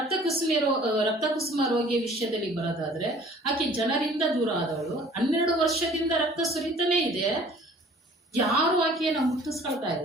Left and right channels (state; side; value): normal; both; correlation 0.51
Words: ಕುಸುಮ ರೋಗಿಯ ವಿಷಯದಲ್ಲಿ ಬರೋದಾದ್ರೆ, ಆಕೆ ಜನರಿಂದ ದೂರ ಆದವಳು. 12 ವರ್ಷದಿಂದ ರಕ್ತ ಸುರಿತಾನೆ ಇದೆ. ಯಾರು ಆಕೆಯನ್ನ ಮುಟ್ಟಿಸ್ಕೊಳ್ತಾ